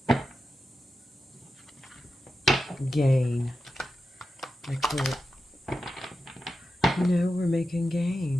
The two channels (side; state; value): both; normal; correlation 0.91